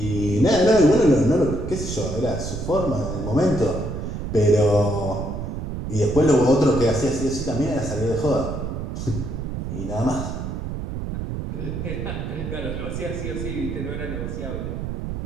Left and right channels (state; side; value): noise; right; rumble, 5 dB below the sound